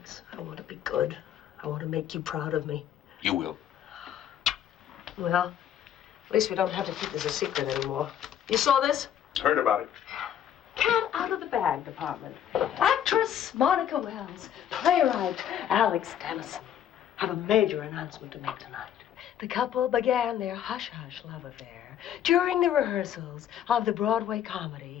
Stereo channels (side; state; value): right; quieter; 9.9 dB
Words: I want to be good. I want to make you proud of me. You will. Well, at least we don't have to keep this a secret anymore. You saw this? Heard about it. Cat out of the bag department. Actress Monica Wells. Playwright Alex Dennison. have a major announcement to make tonight. The couple began their hush-hush love affair during the rehearsals of the Broadway